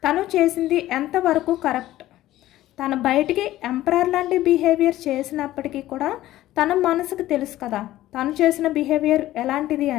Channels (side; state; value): right; quieter; 14.9 dB